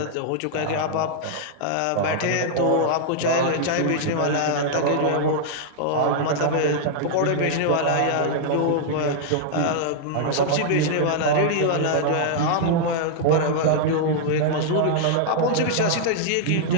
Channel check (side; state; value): both; different; correlation -0.01